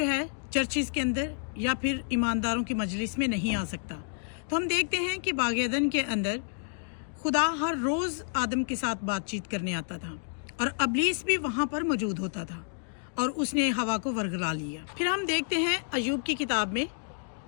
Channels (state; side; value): silent; right; digital silence